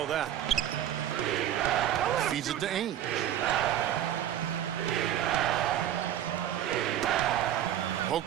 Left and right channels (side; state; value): left; quieter; 11.1 dB